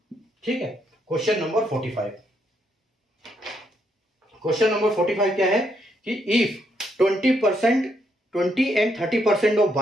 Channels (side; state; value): both; normal; correlation 0.76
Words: ठीक है, क्वेश्चन नंबर 45। क्वेश्चन नंबर 45 क्या है कि if 20 and 30% of